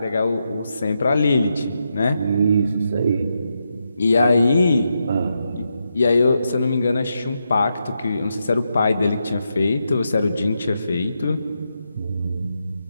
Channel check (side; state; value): both; inverted; correlation -0.84